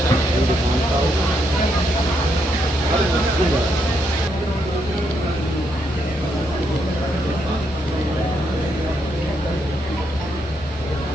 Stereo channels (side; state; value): both; normal; correlation 0.78